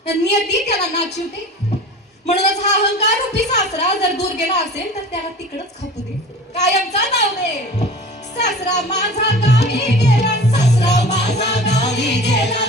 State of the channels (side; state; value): both; normal; correlation 0.39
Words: नियती त्याला नाचवते. म्हणूनच हा अहंकार रूपी सासरा जर दूर गेला असेल तर त्याला तिकडच खपू दे, कायमचा नाव दे. सासरा माझा गावी गेला, सासरा माझा गावी गेला,